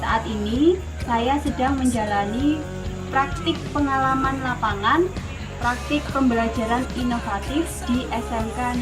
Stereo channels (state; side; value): identical; both; correlation 1.00